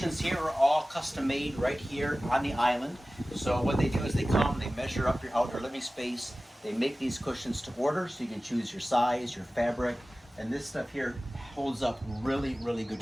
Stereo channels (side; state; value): both; normal; correlation 0.96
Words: here are all custom made right here on the island. So what they do is they come, they measure up your outdoor living space, they make these cushions to order, so you can choose your size, your fabric, and this stuff here holds up really, really good